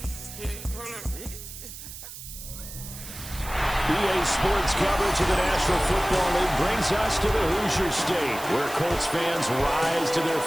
Sports coverage of the National Football League brings us to the Hoosier State, where Colts fans rise to their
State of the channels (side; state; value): right; noise; hiss, 12 dB below the sound